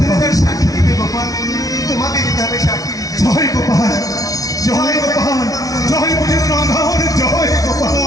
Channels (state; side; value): late; right; 0.18 ms